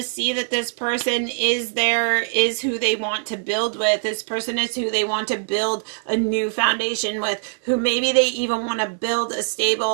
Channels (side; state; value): left; silent; 60 dB below the other